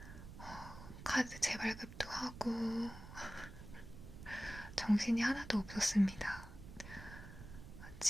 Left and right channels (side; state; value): right; noise; rumble, 13 dB below the sound